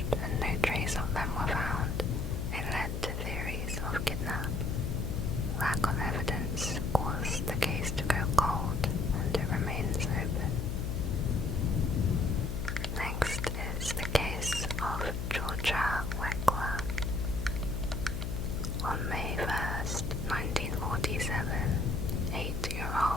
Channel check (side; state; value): left; noise; hum, 3 dB below the sound